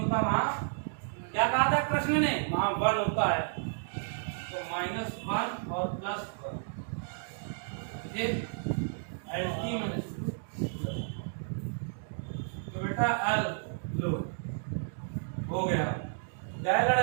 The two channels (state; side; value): silent; left; digital silence